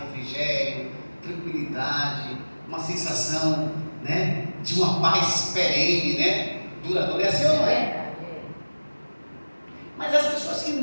tranquilidade, uma sensação, né, de uma paz perene, né? Duradoura. É assim ou não é? Mas as pessoas que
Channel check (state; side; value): inverted; both; correlation -1.00